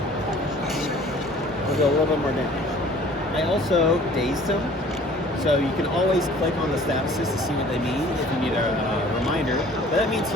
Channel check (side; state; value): both; normal; correlation 0.51